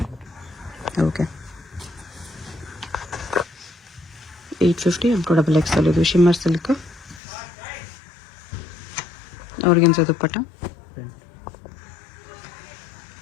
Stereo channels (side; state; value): right; drops out; at 7.2 s